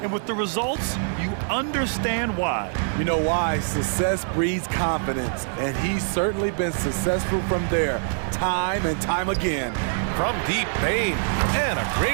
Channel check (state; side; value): silent; left; 62 dB below the other